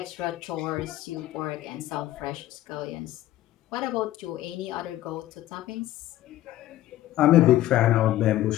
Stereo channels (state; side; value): quieter; right; 14.5 dB